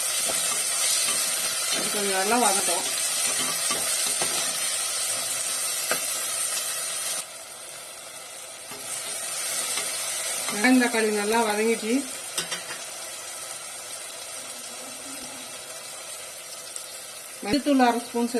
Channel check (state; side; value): identical; both; correlation 1.00